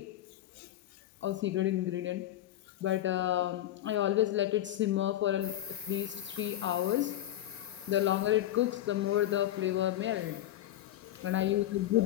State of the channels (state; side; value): quieter; right; 13.3 dB